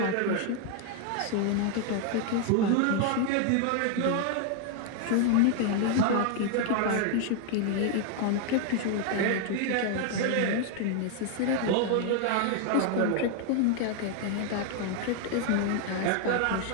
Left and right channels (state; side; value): different; both; correlation 0.00